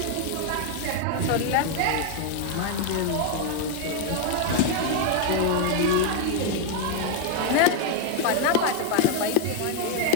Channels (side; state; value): both; different; correlation 0.00